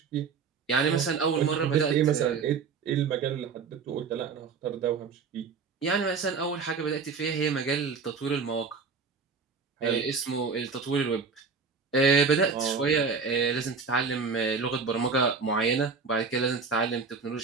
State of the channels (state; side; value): quieter; left; 5.1 dB